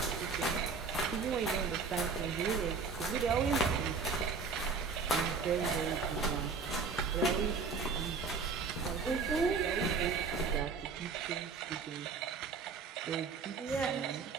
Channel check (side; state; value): left; quieter; 4.9 dB